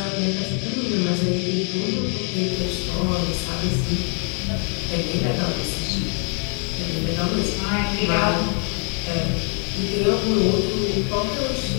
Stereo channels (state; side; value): quieter; right; 39.9 dB